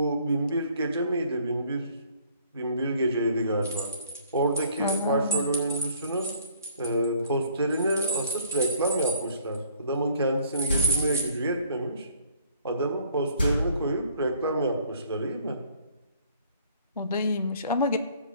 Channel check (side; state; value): both; inverted; correlation -0.59